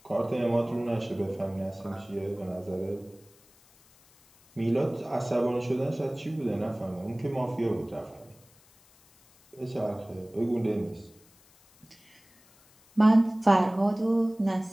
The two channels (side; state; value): left; noise; hiss, 29 dB below the sound